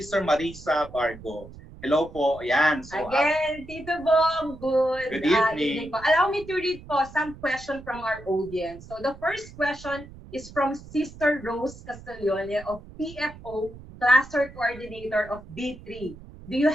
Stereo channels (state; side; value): noise; right; rumble, 17 dB below the sound